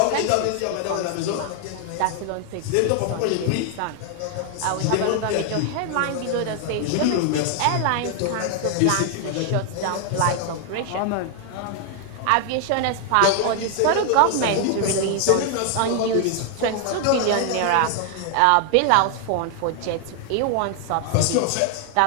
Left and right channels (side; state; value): both; different; correlation 0.00